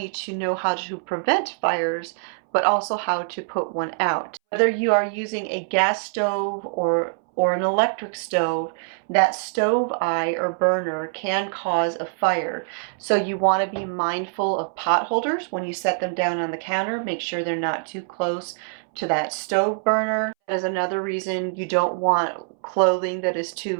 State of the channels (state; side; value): silent; left; 63 dB below the other